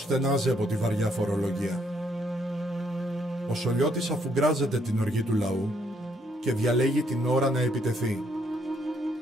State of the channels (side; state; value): both; normal; correlation 0.71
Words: στενάζει από τη βαριά φορολογία. Ο Σολιώτης αφουγκράζεται την οργή του λαού και διαλέγει την ώρα να επιτεθεί.